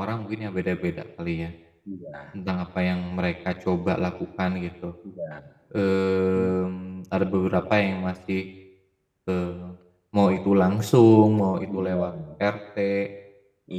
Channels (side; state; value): both; identical; correlation 1.00